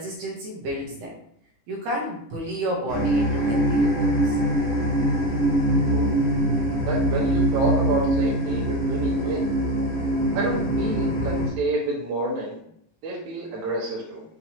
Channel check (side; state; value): left; late; 18 ms